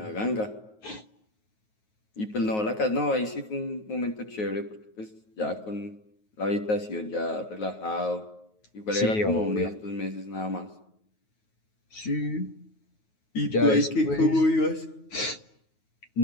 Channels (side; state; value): right; late; 9.4 ms